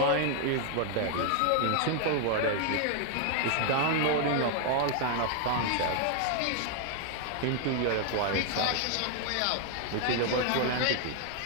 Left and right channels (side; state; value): both; different; correlation 0.00